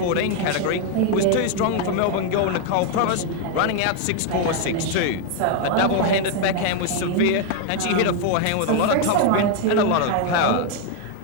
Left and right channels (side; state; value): both; different; correlation 0.01